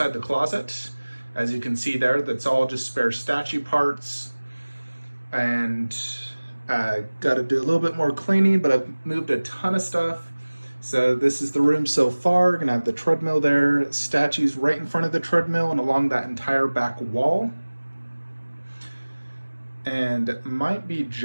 the closet. As you can see there, that's all just spare statue parts. And got to do a little bit more cleaning, but I've moved a ton of stuff. So this is the room so far. Gonna have the treadmill there, statues right in front of the treadmill and along that entire back wall. And it might be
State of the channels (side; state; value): both; inverted; correlation -1.00